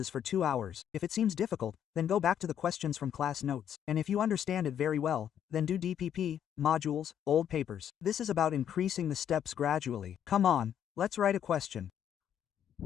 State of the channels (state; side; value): quieter; right; 9.5 dB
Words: for 2 hours. If it seems difficult, then go back to the questions from class notes. And if you understand it very well, then do DPP, modules, old papers. This is about increasing the steps gradually. Come on, let's write a question.